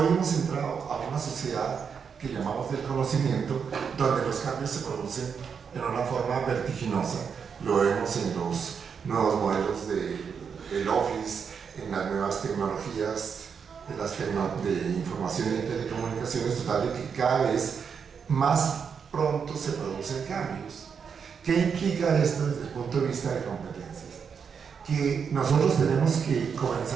hemos entrado a una sociedad que llamamos del conocimiento, donde los cambios se producen en una forma vertiginosa. Lo vemos en los nuevos modelos del Office, en las nuevas tecnologías de información y telecomunicaciones, total de que cada vez más pronto se producen cambios. ¿Qué implica esto desde el punto de vista de competencias? Que nosotros tenemos que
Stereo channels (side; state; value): left; quieter; 6.5 dB